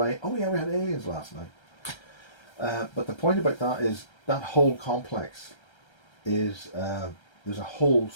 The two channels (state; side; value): late; right; 1.3 ms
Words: oh yeah, we had aliens last night. But the point about that is that whole complex is